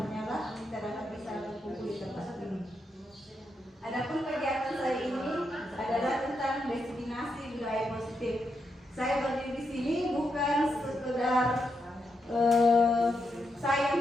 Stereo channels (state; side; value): normal; both; correlation 0.83